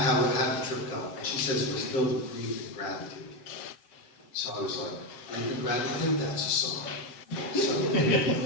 how did the trip go? And she says it was filled with grief and gratitude. So I was like, grief and gratitude, that's a song. So,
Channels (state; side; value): late; right; 7.8 ms